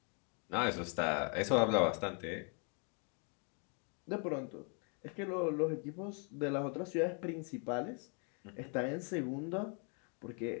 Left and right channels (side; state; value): right; quieter; 38.9 dB